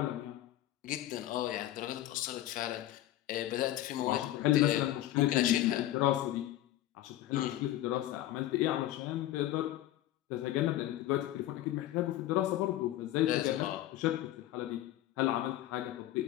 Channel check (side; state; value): right; quieter; 14.2 dB